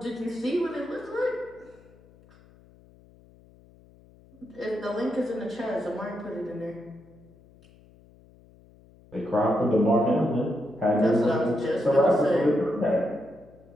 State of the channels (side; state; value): left; noise; hum, 26 dB below the sound